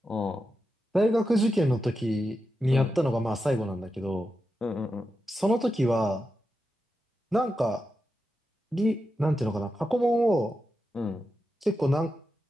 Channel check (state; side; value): normal; both; correlation 0.89